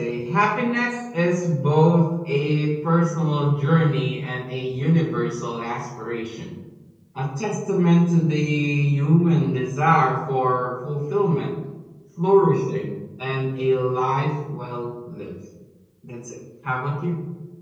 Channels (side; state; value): both; identical; correlation 1.00